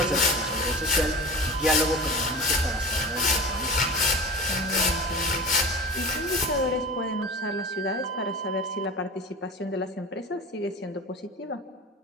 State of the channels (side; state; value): both; normal; correlation 0.34